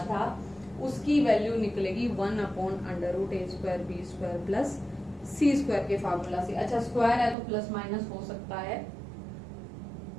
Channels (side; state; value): left; drops out; at 7.4 s